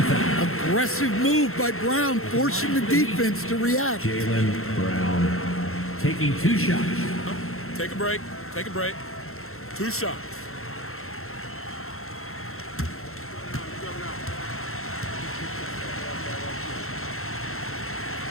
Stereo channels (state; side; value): late; right; 0.62 ms